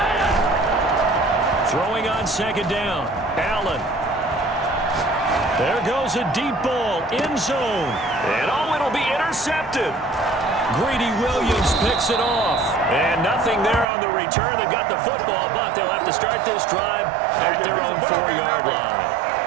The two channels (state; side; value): drops out; left; at 13.9 s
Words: Throwing on second down. Allen. There goes a deep ball, end zone. And oh, it'll be intercepted. Greedy Williams picks it off. And nothing there on the return. They've got the football, but they'll have to start this drive at their own 4-yard line.